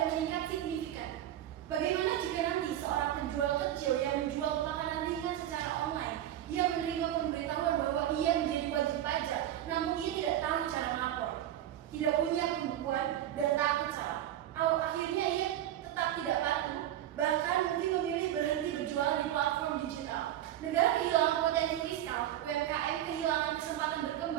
meningkat signifikan. Bagaimana jika nanti seorang penjual kecil yang menjual makanan ringan secara online, ia menerima pemberitahuan bahwa ia menjadi wajib pajak, namun ia tidak tahu cara melapor, tidak punya pembukuan, dan takut salah. Akhirnya ia tetap tidak patuh, bahkan mungkin memilih berhenti berjualan di platform digital. Negara kehilangan potensi fiskal, UMKM kehilangan kesempatan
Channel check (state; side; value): quieter; left; 12.2 dB